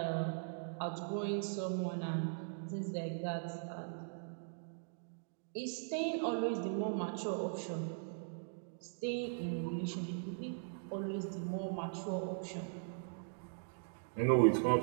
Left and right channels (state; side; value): silent; left; digital silence